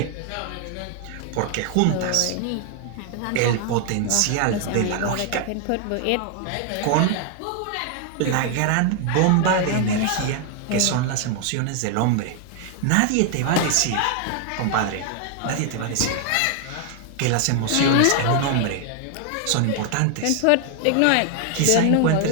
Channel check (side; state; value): both; different; correlation 0.00